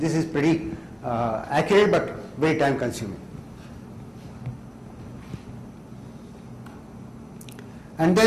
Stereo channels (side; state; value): both; identical; correlation 1.00